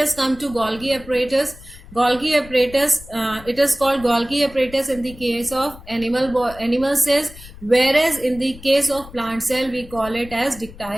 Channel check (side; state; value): left; noise; rumble, 18 dB below the sound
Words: come to Golgi apparatus. Golgi apparatus, it is called Golgi apparatus in the case of animal cells, whereas in the case of plant cell we call it as